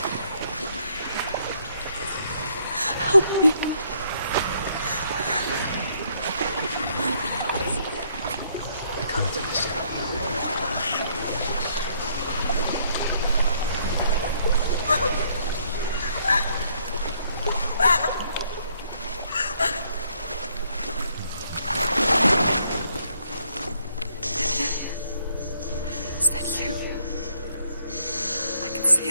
Help me. I can't understand. Is that you? I can see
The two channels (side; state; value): both; inverted; correlation -0.68